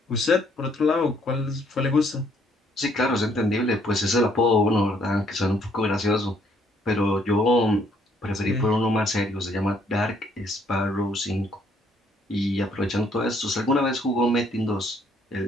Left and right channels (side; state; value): both; normal; correlation 0.67